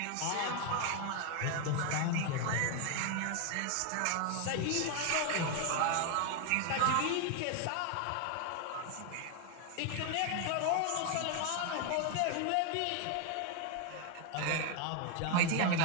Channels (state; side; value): different; both; correlation 0.01